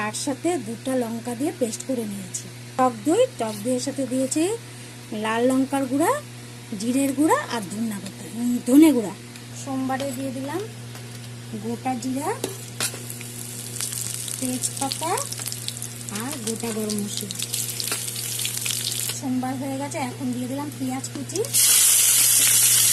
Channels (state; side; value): identical; both; correlation 1.00